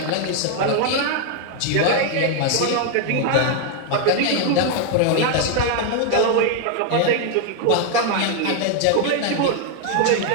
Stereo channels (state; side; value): different; both; correlation 0.00